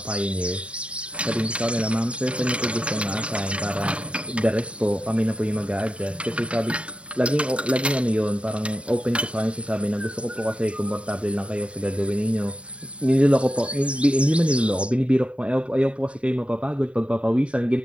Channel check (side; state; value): left; late; 0.060 ms